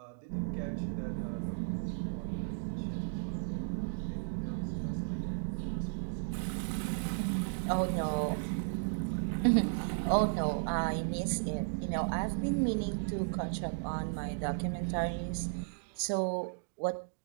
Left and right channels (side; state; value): left; silent; digital silence